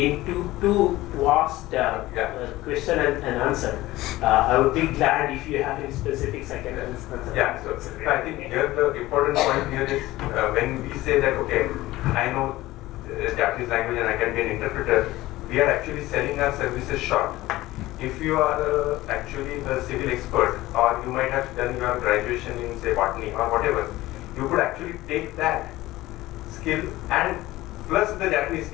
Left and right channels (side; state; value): right; quieter; 17.5 dB